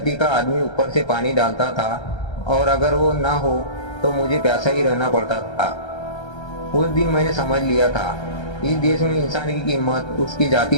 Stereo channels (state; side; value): late; right; 1.3 ms